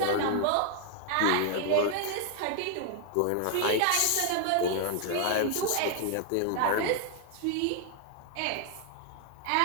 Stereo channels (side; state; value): both; different; correlation 0.00